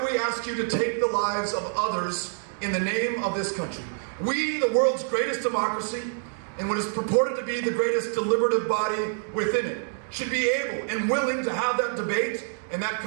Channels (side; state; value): left; silent; digital silence